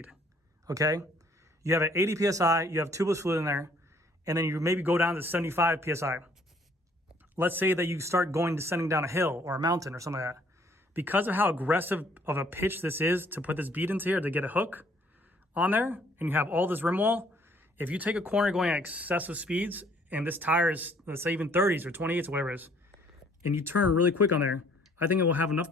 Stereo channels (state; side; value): normal; both; correlation 0.61